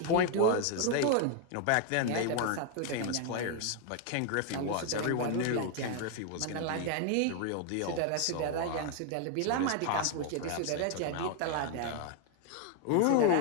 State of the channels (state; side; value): different; both; correlation 0.01